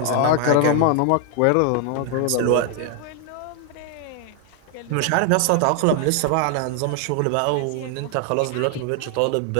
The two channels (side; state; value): both; different; correlation 0.00